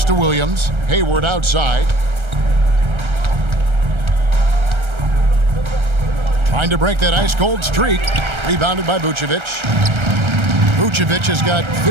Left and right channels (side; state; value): left; late; 1.3 ms